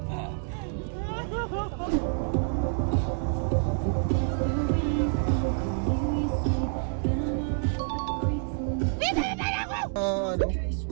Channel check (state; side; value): silent; left; 59 dB below the other